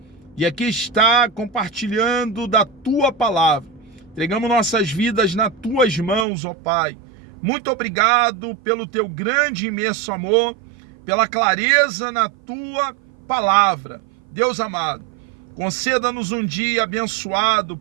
e aqui está compartilhando da tua palavra. Entregamos nossas vidas nas tuas mãos, ó Pai. Muito obrigado pelo teu grande e imenso amor, pela clareza na tua palavra. Deus amado, conceda-nos um dia abençoado,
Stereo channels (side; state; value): left; drops out; at 6.2 s